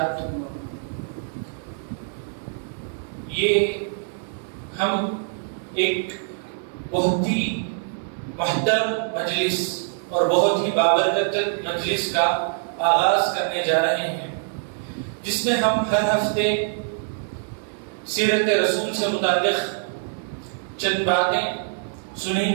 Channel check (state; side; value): silent; left; digital silence